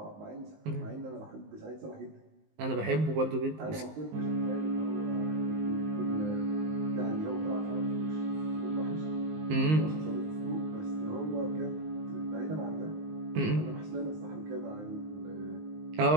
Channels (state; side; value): late; left; 19 ms